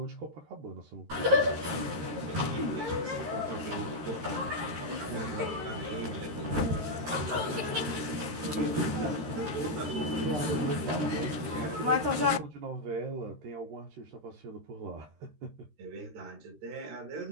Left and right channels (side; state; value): left; late; 13 ms